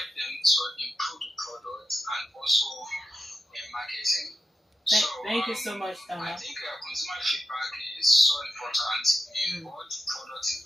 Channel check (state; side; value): normal; both; correlation 0.89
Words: them to improve the product and also in marketing. Thank you so much, I Tama. think consumer feedback is so important in both product